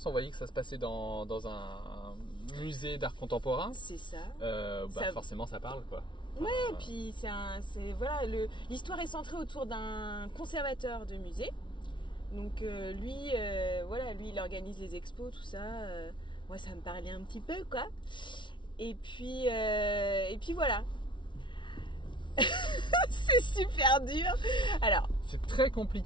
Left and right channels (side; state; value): right; late; 0.24 ms